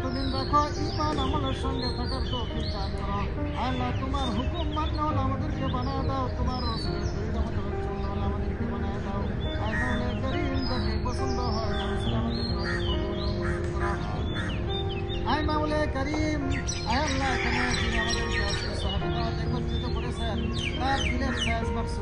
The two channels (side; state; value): both; identical; correlation 1.00